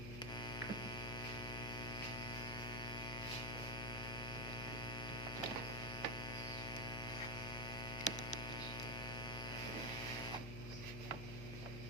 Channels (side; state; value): left; noise; hum, 6 dB below the sound